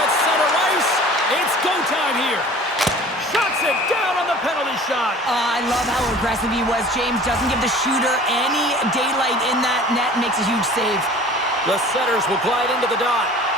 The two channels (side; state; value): both; normal; correlation 0.45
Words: center ice. It's go time here. Shuts it down on the penalty shot. I love how aggressive he was, James. Doesn't give the shooter any daylight in that net. Makes a huge save. The setters will glide into the dot.